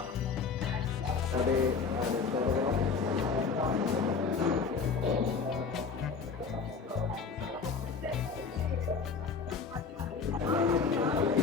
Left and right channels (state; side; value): quieter; right; 5.2 dB